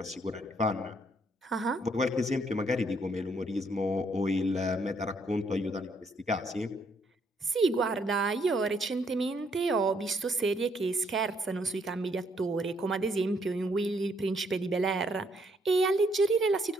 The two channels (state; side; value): normal; both; correlation 0.70